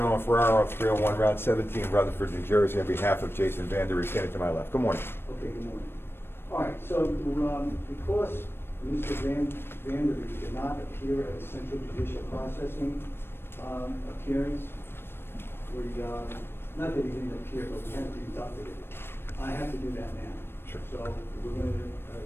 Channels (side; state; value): right; late; 0.11 ms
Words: Ferraro, 301 Route 17, Rutherford, New Jersey, on behalf of Jason Vanderee, standing to my left. Good morning. Okay, good morning. All right, so because Mr. Vanderee did not appear at the Central Judicial Processing appearance, not that he didn't appear, but we had to conduct it. I have to do that now. Sure. So we're going to